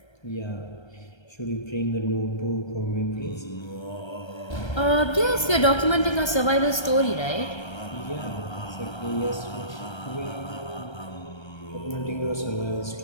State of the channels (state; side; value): late; right; 1.3 ms